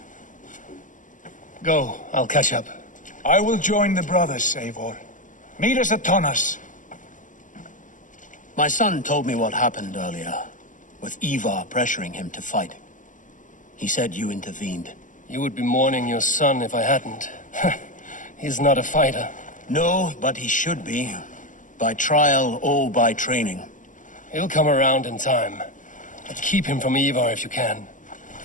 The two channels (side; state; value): right; late; 0.37 ms